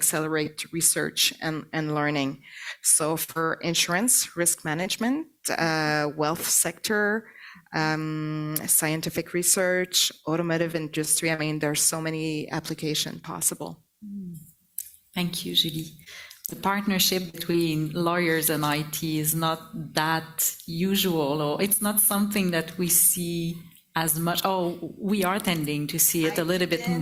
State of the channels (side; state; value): both; identical; correlation 1.00